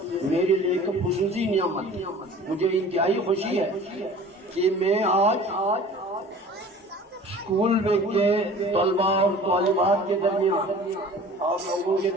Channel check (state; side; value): normal; both; correlation 0.44